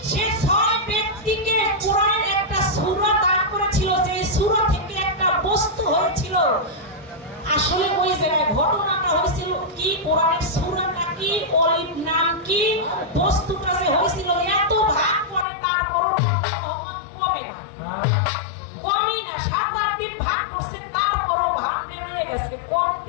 সে 6 ব্যক্তিকে কোরআনের একটা সূরা দান করেছিল, যে সূরা থেকে একটা বস্তু হয়েছিল। আসলে ওই জায়গায় ঘটনাটা হয়েছিল কি, কোরআনের সূরাটা কি, ওলির নাম কি, বস্তুটা যে হয়েছিল এত ভাগ করে তারপরও কমে না, কমই না। 7-8 দিন ভাগ করছে তারপরও ভাগ বেরোয় গেছে,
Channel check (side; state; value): right; drops out; at 15.5 s